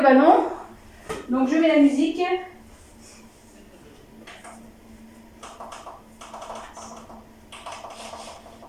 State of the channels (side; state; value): both; identical; correlation 1.00